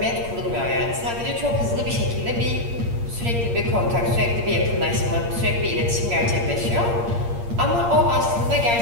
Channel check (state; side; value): late; left; 8.6 ms